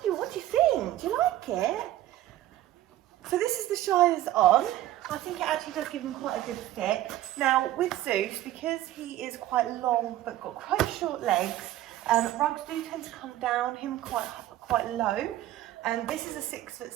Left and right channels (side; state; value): left; quieter; 14.1 dB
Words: What do you think? Do you like it? So this is the Shire's on. I think it actually does give him quite a good fit. Now with Zeus, because he is quite long but got quite short legs, rugs do tend to come down him quite low. And this is a